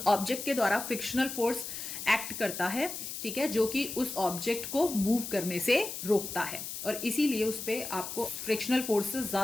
ऑब्जेक्ट के द्वारा फ्रिक्शनल फोर्स एक्ट करता है, ठीक है, जो कि उस ऑब्जेक्ट को मूव करने से रोकता है और इसीलिए उस पे आपको फ्रिक्शनल फोर्स से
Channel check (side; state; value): left; noise; hiss, 7 dB below the sound